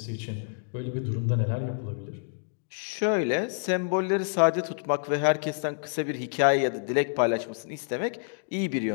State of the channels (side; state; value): right; silent; digital silence